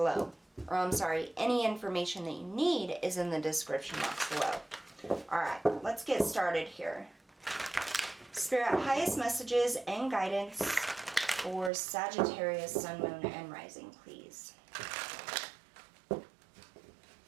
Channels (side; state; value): left; drops out; at 11.7 s